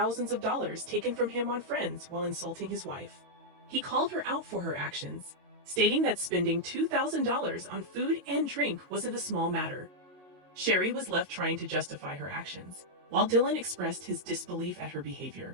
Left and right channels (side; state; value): left; late; 22 ms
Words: of dollars taken from him on friends while insulting his wife. He called her out for her actions, stating that spending $2,000 on food and drink wasn't a small matter. Sherry was left trying to justify her actions, while Dylan expressed his disbelief at her